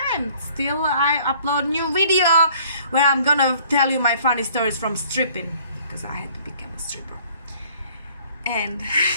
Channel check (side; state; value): both; inverted; correlation -0.56